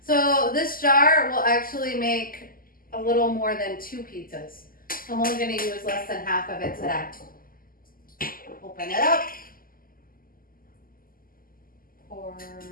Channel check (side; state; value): right; late; 0.42 ms